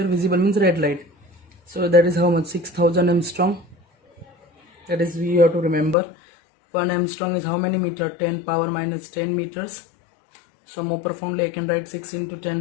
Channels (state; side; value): drops out; right; at 6.0 s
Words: Visible means red light. So that is how much? 6000 Armstrong. That is, we have to remember 1 Armstrong is how many meter? 10 power minus 10 meters. So more profoundly, I can write 6 into